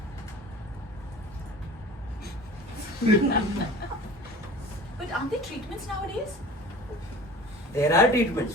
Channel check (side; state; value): both; normal; correlation 0.41